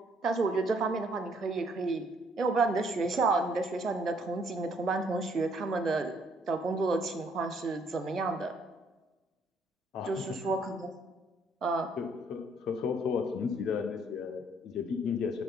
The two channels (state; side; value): normal; both; correlation 0.66